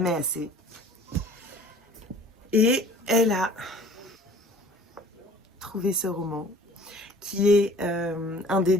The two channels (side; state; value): both; normal; correlation 0.49